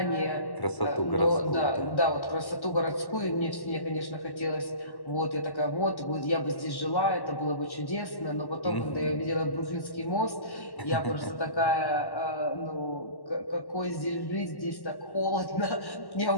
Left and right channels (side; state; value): right; late; 1.1 ms